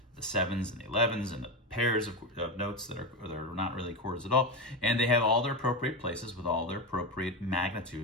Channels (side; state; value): both; normal; correlation 0.16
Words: 7s and the 11s and the pairs of notes that are not really chords at all. And they have all their appropriate places with all their appropriate